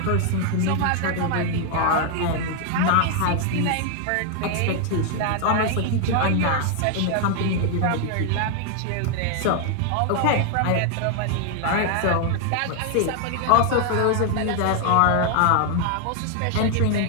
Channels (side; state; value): both; different; correlation 0.00